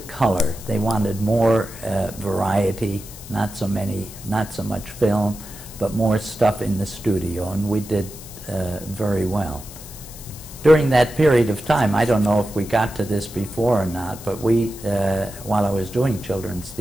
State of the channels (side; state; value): left; noise; hiss, 16 dB below the sound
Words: they wanted more variety, not so much film, but more stuff in the studio, and we did very well. During that period of time, I don't know if we got to this before or not, but we, while I was doing children's